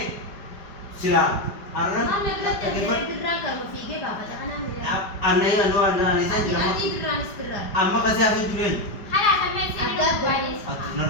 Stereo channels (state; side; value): late; right; 5.1 ms